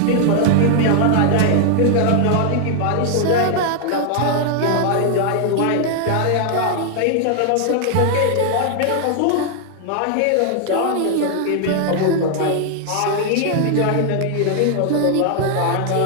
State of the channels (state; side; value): different; both; correlation 0.00